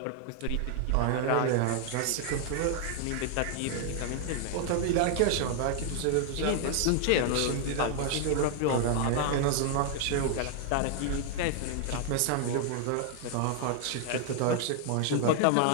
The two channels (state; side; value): different; both; correlation 0.00